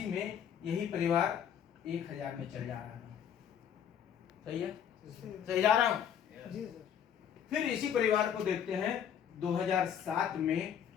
में यही परिवार 1000 में चल जा रहा था। सही है? सही जा रहा हूं? जी सर। फिर इसी परिवार को देखते हैं 2007 में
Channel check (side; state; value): right; quieter; 8.8 dB